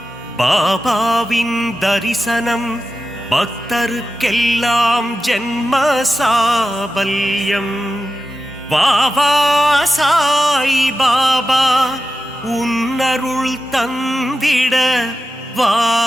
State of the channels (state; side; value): normal; both; correlation 0.92